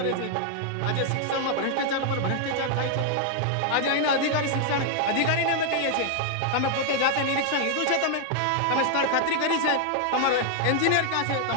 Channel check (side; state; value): both; different; correlation 0.00